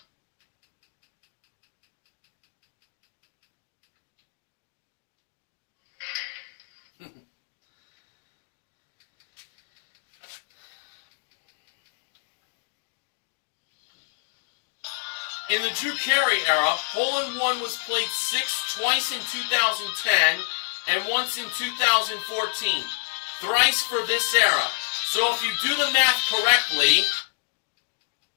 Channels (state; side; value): silent; right; digital silence